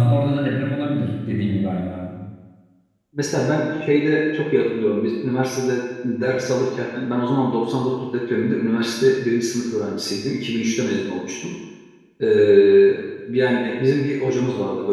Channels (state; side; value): identical; both; correlation 1.00